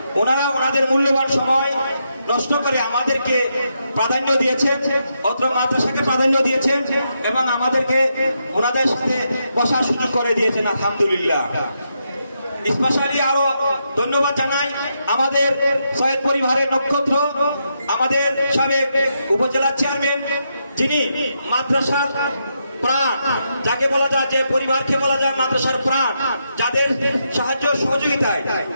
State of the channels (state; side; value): inverted; both; correlation -0.82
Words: ওনারা ওনাদের মূল্যবান সময় নষ্ট করে আমাদেরকে প্রাধান্য দিয়েছেন, অত্র মাদ্রাসাকে প্রাধান্য দিয়েছেন এবং আমাদেরকে ওনাদের সাথে বসার সুযোগ করে দিয়েছেন, আলহামদুলিল্লাহ। স্পেশালি আরো ধন্যবাদ জানাই আমাদের সৈয়দ পরিবারের নক্ষত্র, আমাদের সাবেক উপজেলা চেয়ারম্যান, যিনি মাদ্রাসার প্রাণ, যাকে বলা যায়, যে পরিবারকে বলা যায় মাদ্রাসার প্রাণ, যাদের সাহায্য সহযোগিতায়